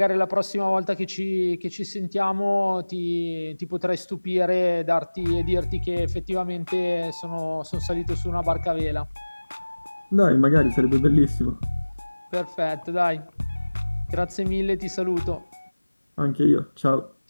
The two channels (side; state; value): both; inverted; correlation -1.00